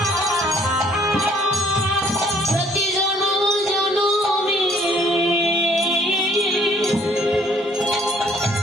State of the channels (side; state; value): both; normal; correlation 0.61